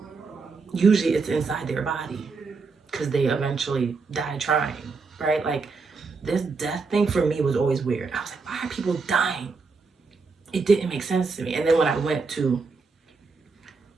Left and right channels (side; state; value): left; quieter; 4.5 dB